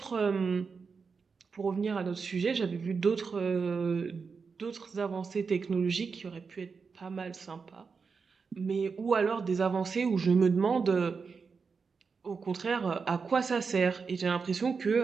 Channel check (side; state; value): left; quieter; 5.2 dB